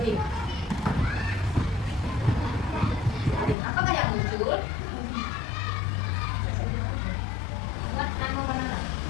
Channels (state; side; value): drops out; right; at 3.6 s